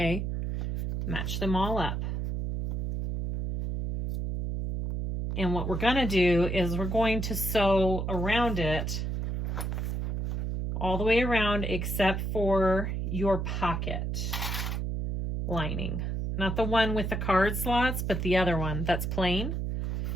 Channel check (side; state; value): right; noise; hum, 1 dB below the sound